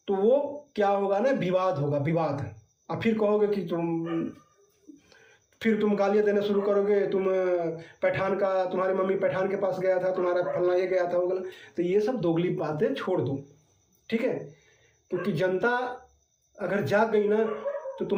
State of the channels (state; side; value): identical; both; correlation 1.00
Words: तो वो क्या होगा ना, विवाद होगा, विवाद। और फिर कहोगे कि फिर तुम गालियाँ देना शुरू करोगे, तुम पठान का, तुम्हारी मम्मी पठान के पास गया था, तुम्हारा फलना ये गया था, वो गया। तो ये सब दोगली बातें छोड़ दो, ठीक है। क्योंकि जनता अगर जाग गई ना तो